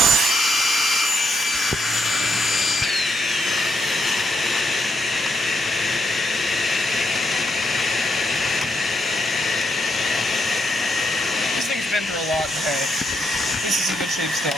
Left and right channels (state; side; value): normal; both; correlation 0.78